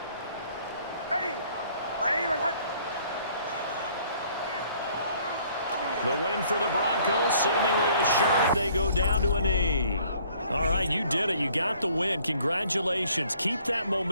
Ready! My name is Hunt. The win for the Broncos, seemingly assured. They go down to a knee. All right, you did it. You got the win. Congratulations. Keep that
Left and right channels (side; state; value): both; inverted; correlation -0.60